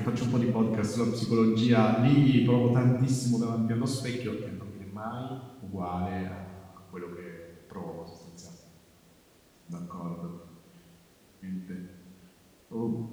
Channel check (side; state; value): both; identical; correlation 1.00